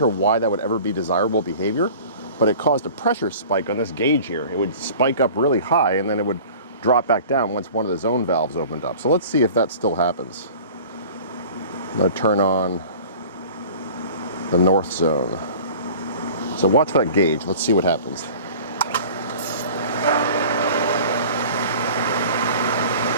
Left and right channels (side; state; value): both; inverted; correlation -0.43